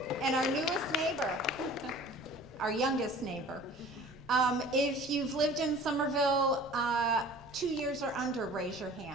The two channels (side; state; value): right; noise; rumble, 26 dB below the sound